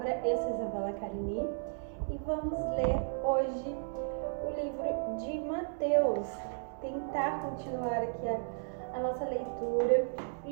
Eu sou Isabela Carini e vamos ler hoje o livro de Mateus. Tentar continuar aqui a nossa leitura. O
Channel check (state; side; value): silent; left; digital silence